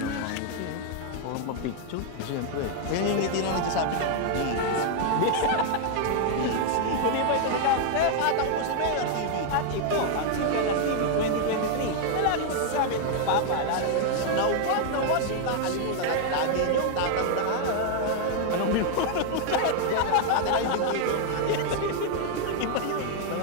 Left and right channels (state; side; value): different; both; correlation 0.00